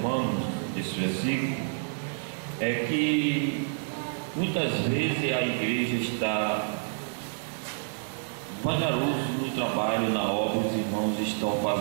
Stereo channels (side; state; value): left; silent; digital silence